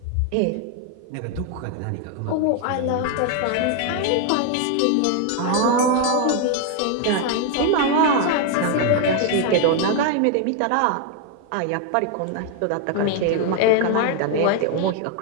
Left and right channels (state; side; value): different; both; correlation 0.01